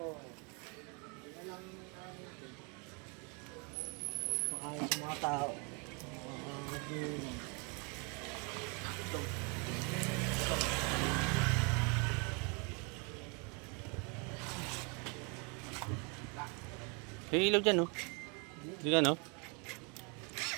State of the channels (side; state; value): left; quieter; 33.3 dB